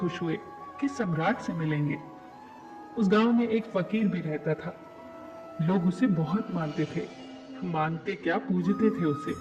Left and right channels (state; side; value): identical; both; correlation 1.00